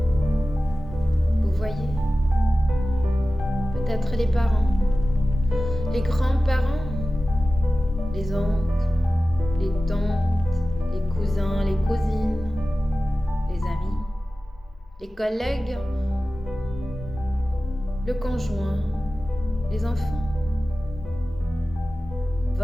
Vous voyez peut-être les parents, les grands-parents, les oncles, les tantes, les cousins, les cousines, les amis, les collègues, le conjoint, les enfants,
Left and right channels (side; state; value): both; normal; correlation 0.95